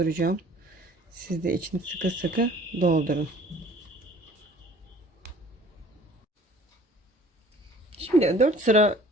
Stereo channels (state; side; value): normal; both; correlation 0.51